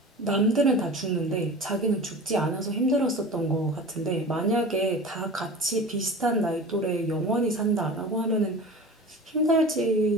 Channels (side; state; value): both; normal; correlation 0.36